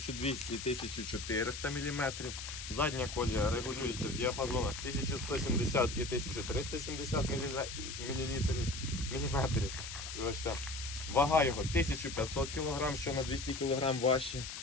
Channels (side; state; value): left; noise; hiss, 8 dB below the sound